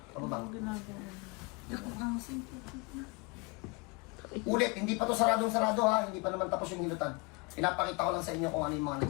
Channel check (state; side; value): quieter; right; 28.2 dB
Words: Pababa. Ulit, hindi pa to saradong-sarado ha. Hindi pa naman tapos yung hilutan. Pinapakita ko lang sa inyo kung ano yung mga